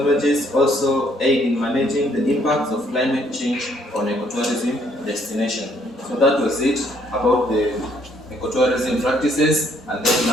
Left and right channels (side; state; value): both; normal; correlation 0.66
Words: also aid in managing the impacts of climate change on ecotourism destination. So that was it about the ecotourism practices, and then